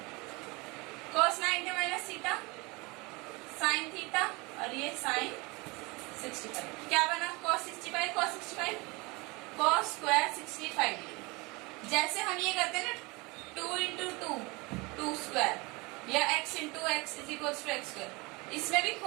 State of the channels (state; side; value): quieter; left; 25.8 dB